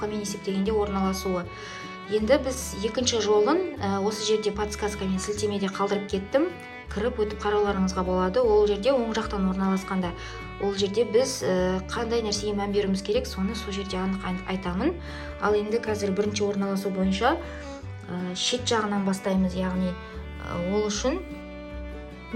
есептегенде орналасуы. Енді біз екінші жолын осы жерде подсказкамен сілтемеде қалдырып кеттім. Кіріп өтіп қарауларыңызға болады. Ол жерде оң жақтан орналасқанда. Ол жерде біз қандай нәрсеге мән беруіміз керек, соны сол жерде анық айтамын. Ал енді қазір бірінші орналасу бойынша шет жағынан бастаймыз. Яғни ол үшін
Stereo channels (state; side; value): identical; both; correlation 1.00